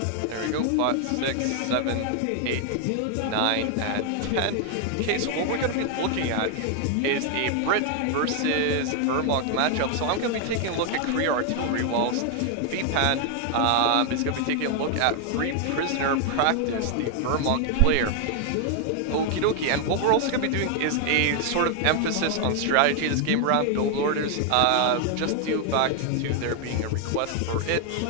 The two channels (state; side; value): different; both; correlation 0.00